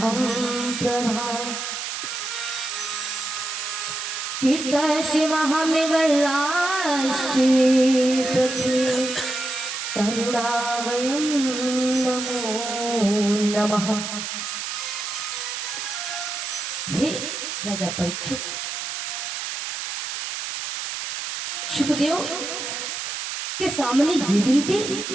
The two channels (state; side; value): noise; right; hiss, 5 dB below the sound